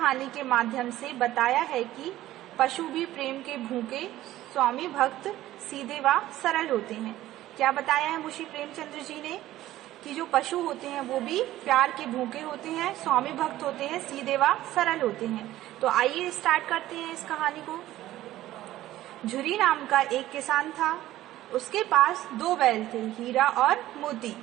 के माध्यम से बताया है कि पशु भी प्रेम के भूखे, स्वामी भक्त, सीधे व सरल होते हैं। क्या बताया है मुंशी प्रेमचंद्र जी ने? कि जो पशु होते हैं वो भी प्यार के भूखे होते हैं, स्वामी भक्त होते हैं, सीधे व सरल होते हैं। तो आइए स्टार्ट करते हैं इस कहानी को। झुरी नाम का एक किसान था। उसके पास 2 बैल थे, हीरा और मोती।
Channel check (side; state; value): left; quieter; 14.8 dB